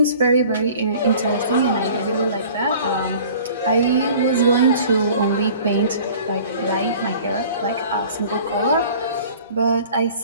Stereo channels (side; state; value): both; inverted; correlation -0.47